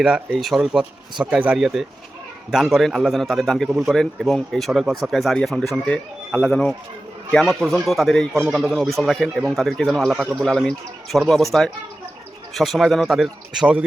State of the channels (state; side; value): normal; both; correlation 0.94